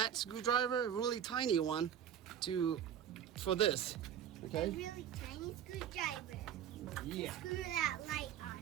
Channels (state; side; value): quieter; left; 9.6 dB